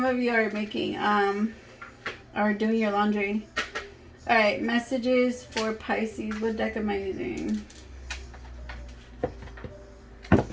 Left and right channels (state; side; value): identical; both; correlation 1.00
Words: of you are making or doing your laundry. All right, messages for Pisces. What deck am I using? All